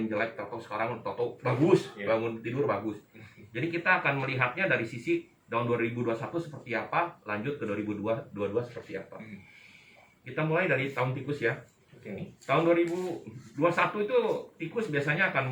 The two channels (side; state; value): both; identical; correlation 1.00